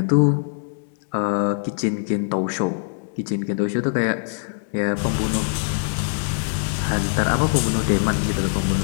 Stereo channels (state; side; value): silent; right; 64 dB below the other